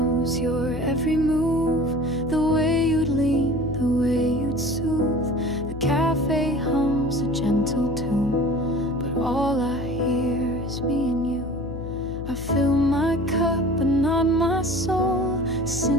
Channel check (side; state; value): left; noise; hum, 9 dB below the sound